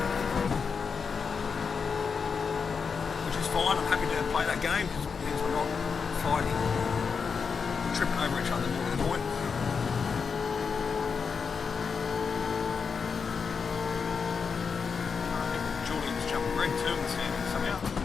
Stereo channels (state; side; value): quieter; right; 5.7 dB